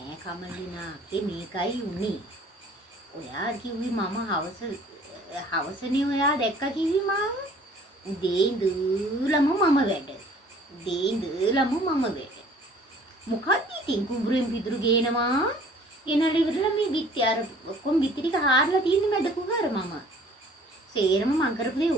කමලිනා මේකයි උනේ. ඔයා කිව්වි මම හවසනේ ඔයා දැක්ක කිව්වි මාව. උදේ ඉඳලම මම වැඩ. උදේ ඉඳලම මම වැඩ. මොකක්ද ඉතින් කුඹුරෙන් පිදුරු ගේනවා. ගෙනල්ලා ඉවරලා මේ බිත්ති අර ඔක්කොම බිත්ති ටික හාරලා තියෙන්නේ මැද කුහර මම. සේරම මං කරපු දේ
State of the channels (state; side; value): normal; both; correlation 0.53